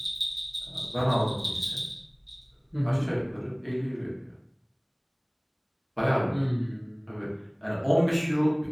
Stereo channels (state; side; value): identical; both; correlation 1.00